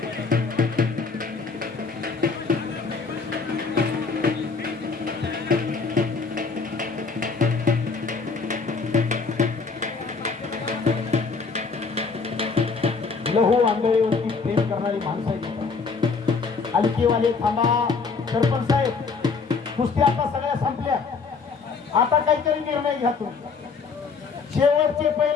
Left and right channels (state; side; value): quieter; right; 4.8 dB